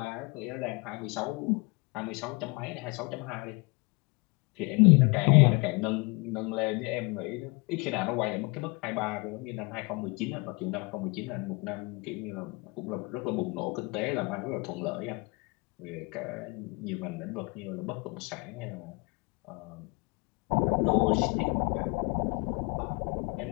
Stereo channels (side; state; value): right; quieter; 27.8 dB